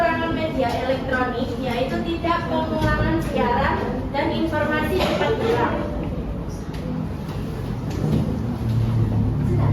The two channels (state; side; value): identical; both; correlation 1.00